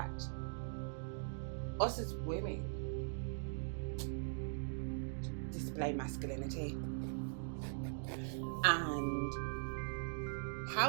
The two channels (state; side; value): silent; left; digital silence